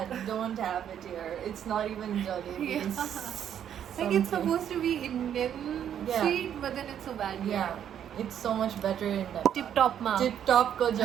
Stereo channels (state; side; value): quieter; left; 9.5 dB